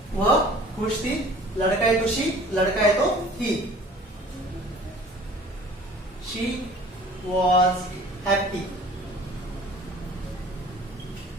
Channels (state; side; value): normal; both; correlation 0.47